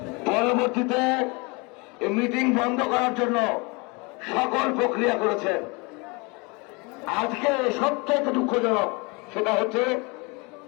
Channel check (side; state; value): right; quieter; 28.7 dB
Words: পরবর্তীতে এই মিটিং বন্ধ করার জন্য সকল প্রক্রিয়া করেছেন। আজকে সবচেয়ে দুঃখজনক সেটা হচ্ছে